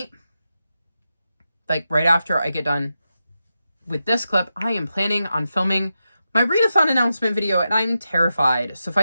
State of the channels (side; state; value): both; inverted; correlation -0.89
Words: like right after I get done with this clip, I am planning on filming my readathon announcement video, and I'm terrified. So if I